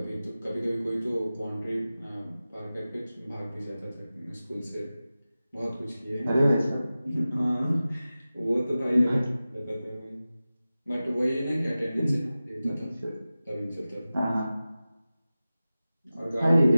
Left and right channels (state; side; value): inverted; both; correlation -0.95